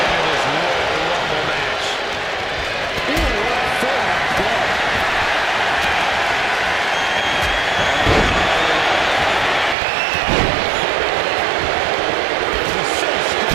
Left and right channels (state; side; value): drops out; left; at 9.8 s